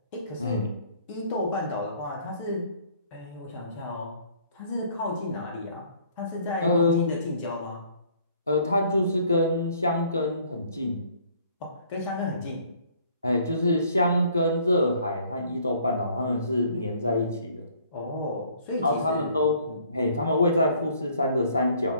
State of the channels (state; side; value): inverted; both; correlation -0.59